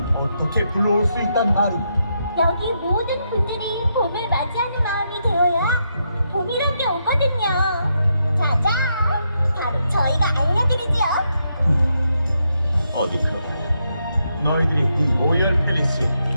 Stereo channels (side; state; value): both; inverted; correlation -0.81